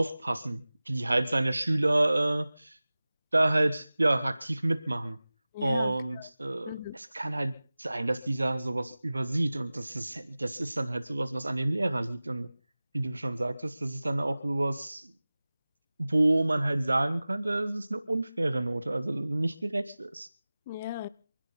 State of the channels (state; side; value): inverted; both; correlation -0.98